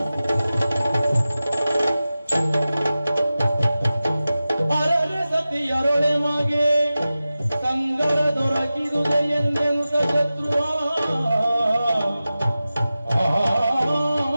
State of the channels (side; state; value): both; inverted; correlation -0.95